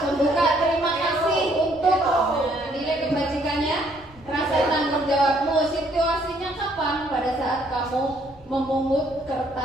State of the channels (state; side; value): noise; right; rumble, 25 dB below the sound